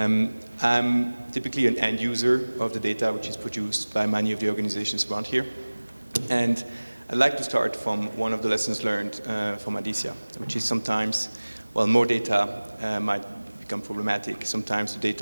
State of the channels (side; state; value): both; inverted; correlation -1.00